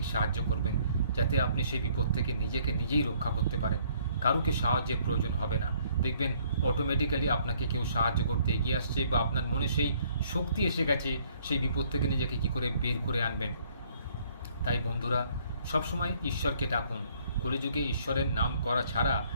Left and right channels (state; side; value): inverted; both; correlation -0.63